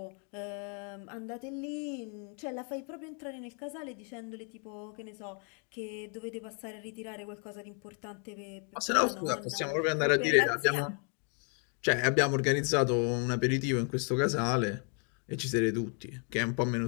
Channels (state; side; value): quieter; right; 39.4 dB